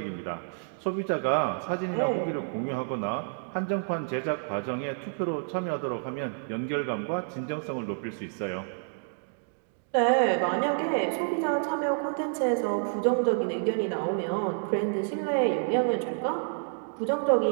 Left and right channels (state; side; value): silent; left; digital silence